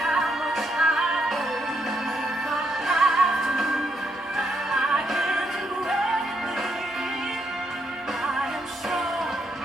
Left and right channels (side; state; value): both; normal; correlation 0.77